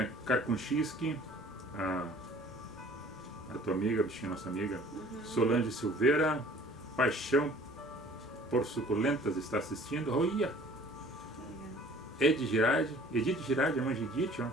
Karkunchinski, a tua amiga, bichinha, nossa amiga. Solange Silveira, Paixão por Suculentas está assistindo. Olha! Edith Girardi, a mãe de Edith, ó.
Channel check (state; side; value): normal; both; correlation 0.51